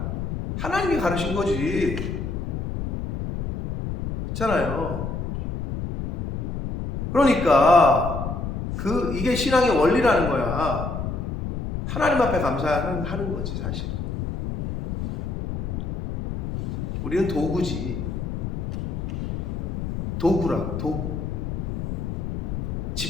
하나님이 가르신 거지. 그렇잖아요. 그러니까 이게 신앙의 원리라는 거야. 하나님 앞에 감사하는 거지 사실은. 우리는 도구지. 도구라 도구.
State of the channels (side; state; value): left; noise; rumble, 4 dB below the sound